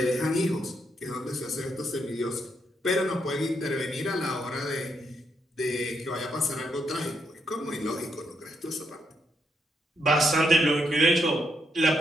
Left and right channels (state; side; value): normal; both; correlation 0.78